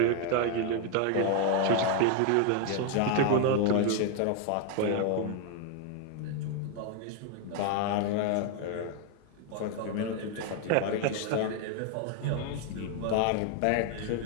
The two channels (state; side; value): different; both; correlation 0.01